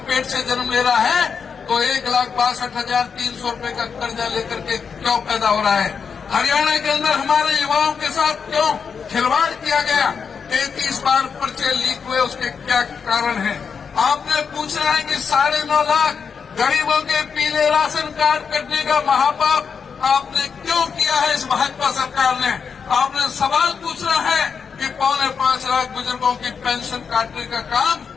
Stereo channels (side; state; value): right; quieter; 6.2 dB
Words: पेट से जन्म ले रहा है तो 1,62,300 रुपए का कर्जा लेकर के क्यों पैदा हो रहा है? हरियाणा के अंदर हमारे युवाओं के साथ क्यों खिलवाड़ किया गया? 33 बार पर्चे लीक हुए, उसके क्या कारण है? आपने पूछना है कि 9.5 लाख गरीबों के पीले राशन कार्ड कटने का महापाप आपने क्यों किया है इस भाजपा सरकार ने? आपने सवाल पूछना है कि 4.25 लाख बुजुर्गों की पेंशन काटने का काम